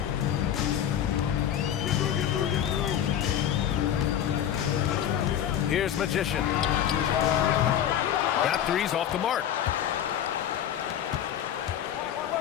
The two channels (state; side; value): quieter; right; 10.2 dB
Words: Here's Magician. That three's off the mark.